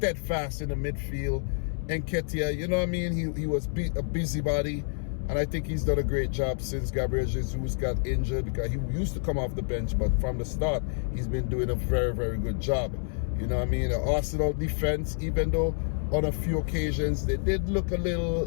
in the midfield. Nketiah, he was a busybody, and I think he's done a great job since Gabriel Jesus got injured, because he used to come off the bench, but from the start, he's been doing a very, very good job. The Arsenal defense, even though on a few occasions they did look a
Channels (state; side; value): silent; right; 59 dB below the other